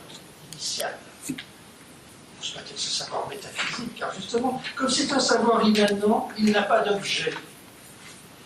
initial. Peut-être ce savoir métaphysique, car justement, comme c'est un savoir immanent, il n'a pas d'objet.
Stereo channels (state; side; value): identical; both; correlation 1.00